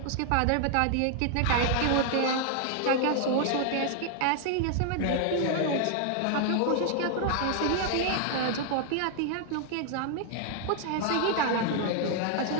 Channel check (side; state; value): both; different; correlation 0.00